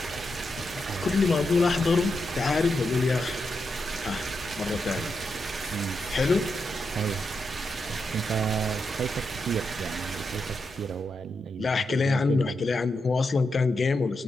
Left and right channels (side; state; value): both; normal; correlation 0.85